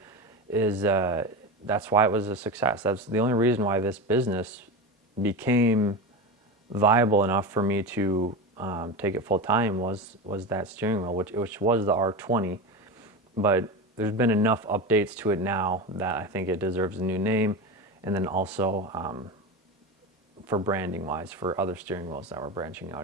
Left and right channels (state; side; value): normal; both; correlation 0.23